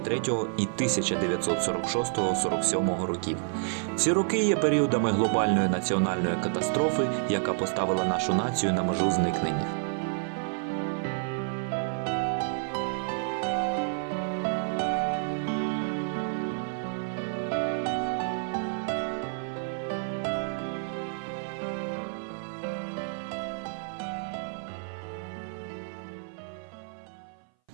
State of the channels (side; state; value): left; silent; 58 dB below the other